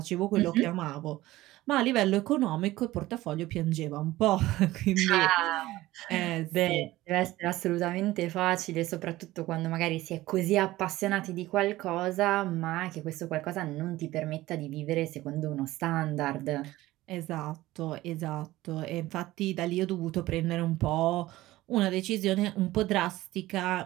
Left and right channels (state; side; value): quieter; left; 17.1 dB